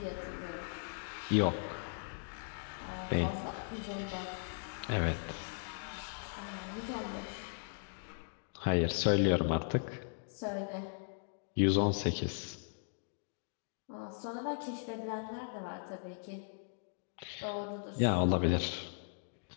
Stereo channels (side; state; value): right; silent; digital silence